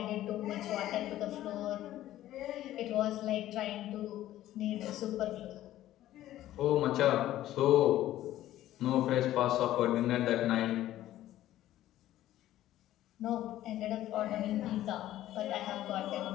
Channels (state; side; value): quieter; right; 13.8 dB